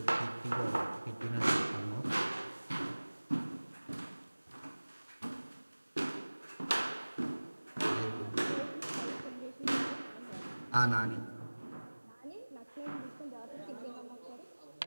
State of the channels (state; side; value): inverted; both; correlation -1.00